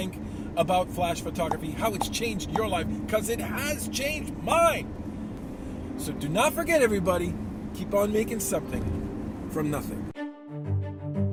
about flash photography, how it's changed your life, because it has changed mine. So do not forget, everybody, keep on making something from nothing.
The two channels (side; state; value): both; identical; correlation 1.00